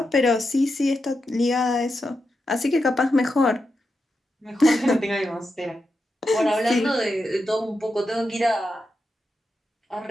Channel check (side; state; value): both; normal; correlation 0.87